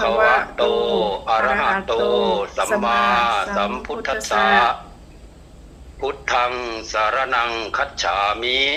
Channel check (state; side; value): identical; both; correlation 1.00